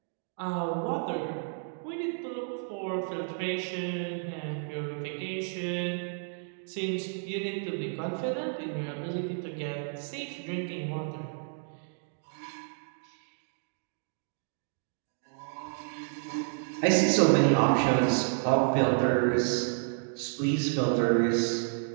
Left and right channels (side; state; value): left; silent; 57 dB below the other